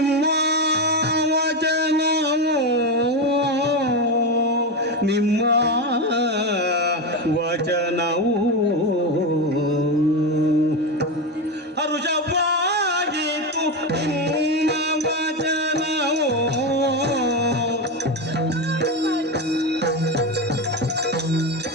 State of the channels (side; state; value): both; normal; correlation 0.14